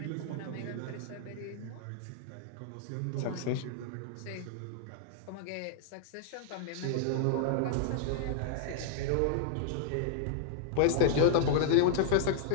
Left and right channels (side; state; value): both; different; correlation -0.01